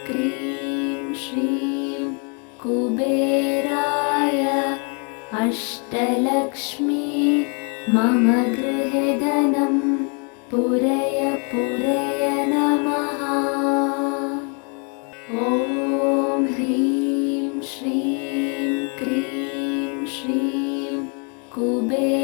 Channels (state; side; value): quieter; right; 37.2 dB